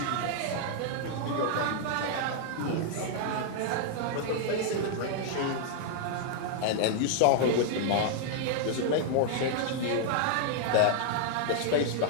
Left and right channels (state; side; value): different; both; correlation 0.00